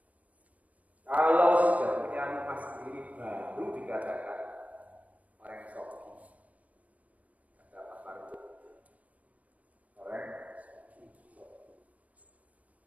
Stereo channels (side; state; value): left; late; 0.070 ms